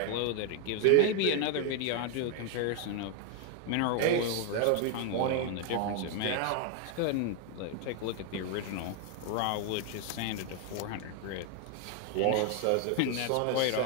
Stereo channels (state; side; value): different; both; correlation 0.01